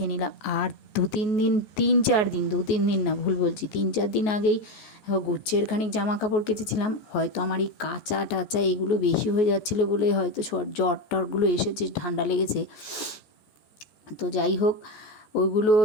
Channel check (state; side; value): late; right; 14 ms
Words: নিলাম। আর দু তিন দিন না, ভুল বলছি, 3-4 দিন আগেই গুচ্ছের খানিক জামা কাপড় কেচেছিলাম। হয়তো আমার এই কাঁচা টাচা এগুলো বেশি হয়ে যাচ্ছিলো বলে হয়তো জ্বর টরগুলো এসেছে, ঠান্ডা লেগেছে। তো যাই হোক, ওইগুলো